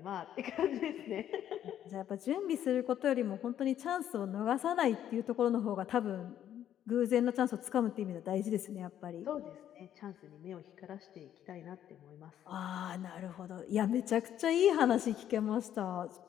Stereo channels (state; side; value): quieter; right; 10.7 dB